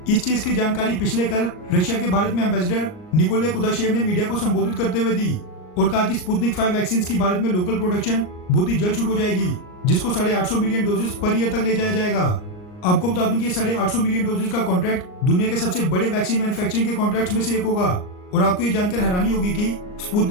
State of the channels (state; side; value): late; right; 39 ms